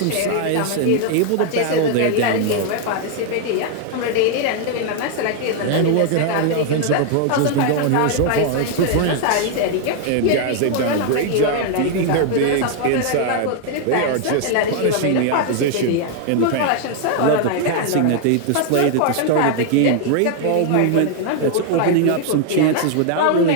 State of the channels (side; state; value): both; different; correlation 0.00